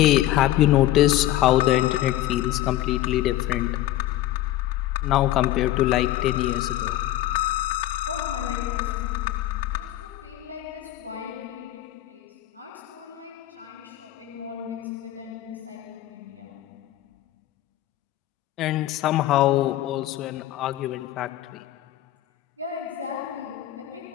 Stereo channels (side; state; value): right; quieter; 14.3 dB